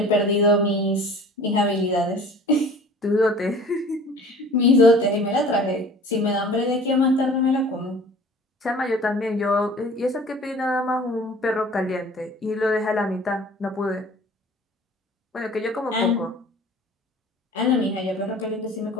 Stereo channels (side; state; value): both; normal; correlation 0.46